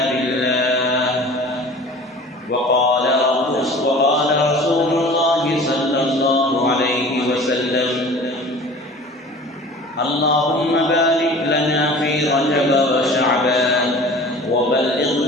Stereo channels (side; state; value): both; normal; correlation 0.42